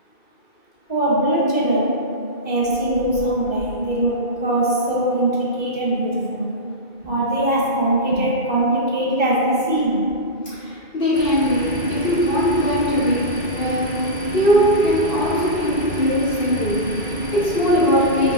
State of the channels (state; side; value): late; right; 2.0 ms